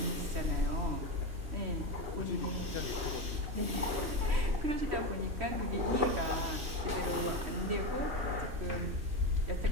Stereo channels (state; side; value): late; left; 2.9 ms